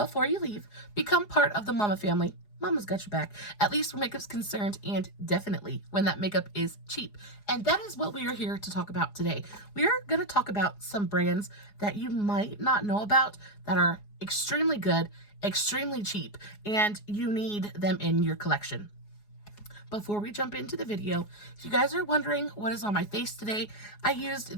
you leave. Become part of the Mama family. Mama's got your back, at least where makeup's concerned, and definitely when that makeup is cheap. And that is what we are here to talk about today. We are going to talk about some brands that you might not know about that are extremely good, extremely cheap, and you need them in your collection. Before we jump into the video, if you guys are wondering what is on my face today, I used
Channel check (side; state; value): right; late; 4.8 ms